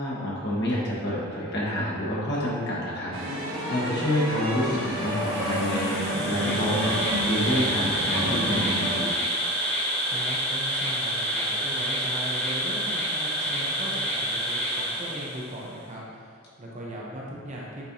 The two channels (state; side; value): normal; both; correlation 0.32